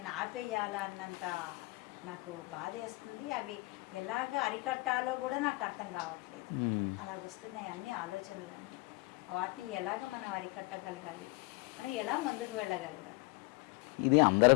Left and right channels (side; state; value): right; quieter; 24.3 dB